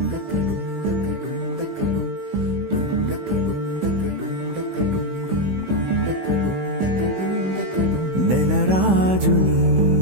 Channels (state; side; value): late; left; 16 ms